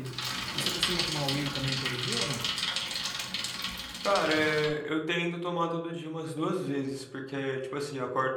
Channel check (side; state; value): both; identical; correlation 1.00